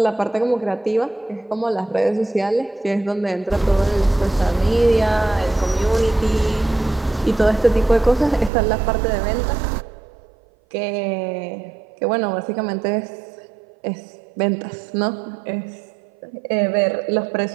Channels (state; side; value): drops out; left; at 8.5 s